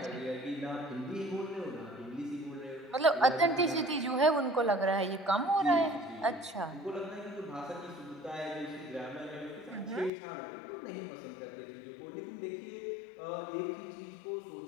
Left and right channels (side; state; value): right; drops out; at 10.1 s